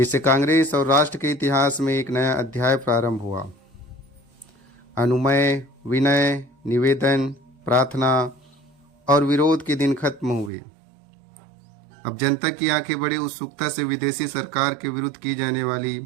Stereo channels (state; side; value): drops out; left; at 10.5 s